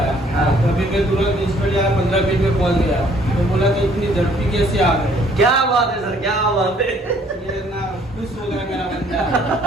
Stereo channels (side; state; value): both; normal; correlation 0.61